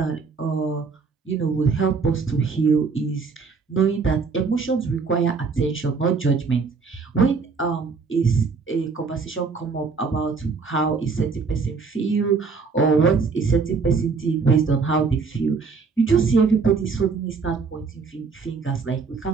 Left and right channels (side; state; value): left; quieter; 4.9 dB